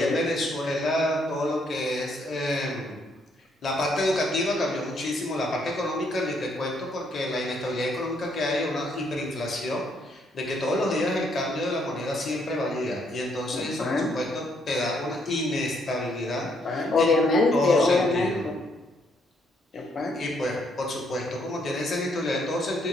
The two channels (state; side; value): normal; both; correlation 0.71